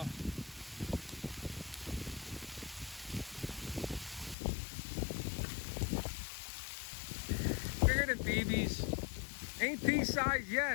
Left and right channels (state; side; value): drops out; right; at 4.4 s